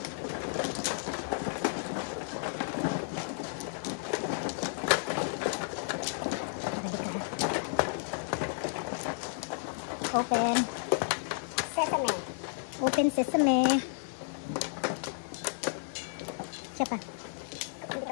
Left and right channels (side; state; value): right; silent; digital silence